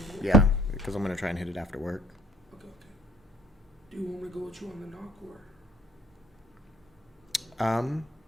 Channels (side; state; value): both; normal; correlation 0.58